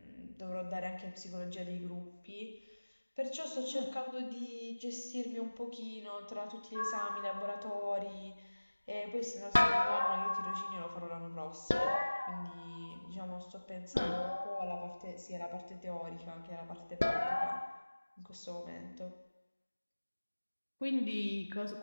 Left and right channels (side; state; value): both; inverted; correlation -1.00